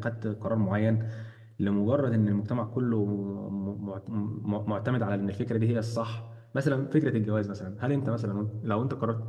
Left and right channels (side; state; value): both; identical; correlation 1.00